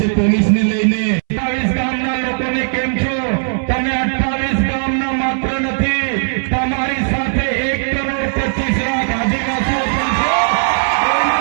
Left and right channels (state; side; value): silent; left; 66 dB below the other